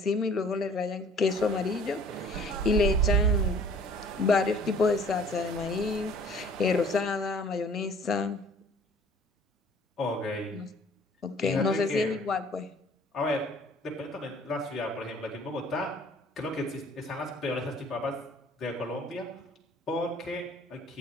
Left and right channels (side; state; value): both; normal; correlation 0.53